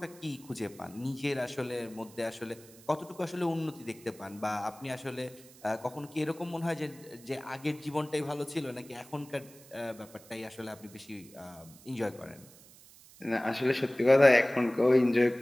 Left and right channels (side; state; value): right; noise; hiss, 22 dB below the sound